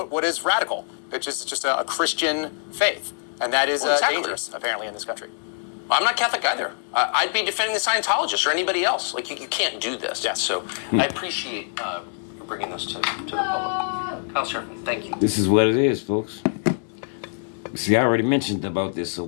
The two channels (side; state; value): right; silent; digital silence